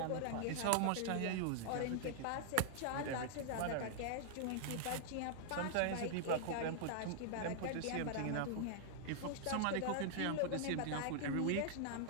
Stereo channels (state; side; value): different; both; correlation -0.01